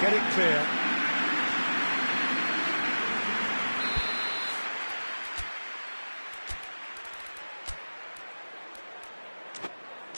get it clear.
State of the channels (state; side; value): inverted; both; correlation -1.00